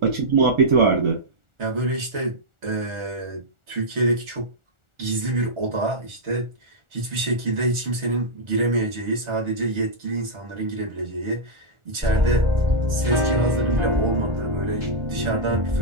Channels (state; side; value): late; left; 1.4 ms